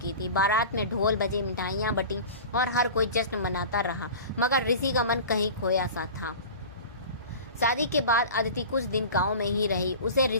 थी। बारात में ढोल बजे, मिठाइयाँ बटी और हर कोई जश्न मनाता रहा, मगर ऋषि का मन कहीं खोया सा था। शादी के बाद अदिति कुछ दिन गांव में ही रही। उसे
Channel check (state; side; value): inverted; both; correlation -0.36